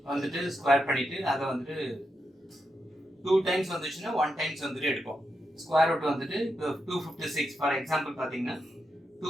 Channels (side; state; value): both; normal; correlation 0.85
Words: வந்துட்டு ஸ்கொயர் பண்ணிட்டு அதை வந்துட்டு 2 times வந்துச்சுன்னா 1 times வந்துட்டு எடுப்போம். ஸ்கொயர் ரூட் வந்துட்டு 256 ஃபார் எக்ஸாம்பிள் பார்த்தீங்கன்னா